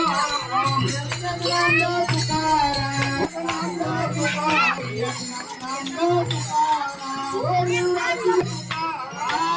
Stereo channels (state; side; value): identical; both; correlation 1.00